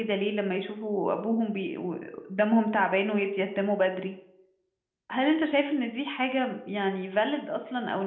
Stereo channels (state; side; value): identical; both; correlation 1.00